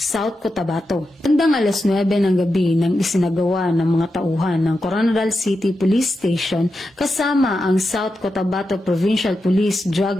Cotabato. Bandang alas 9 ng gabi nang isinagawa ng mga tauhan ng Coronadal City Police Station kasama ang South Cotabato Provincial Police Drug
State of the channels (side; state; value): both; normal; correlation 0.89